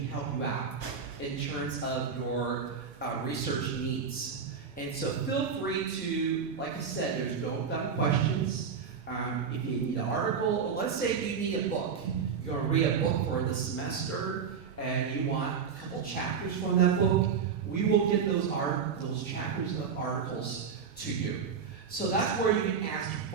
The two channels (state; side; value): quieter; left; 6.4 dB